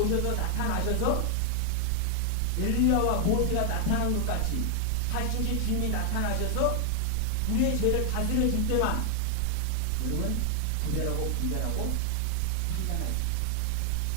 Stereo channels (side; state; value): both; different; correlation 0.00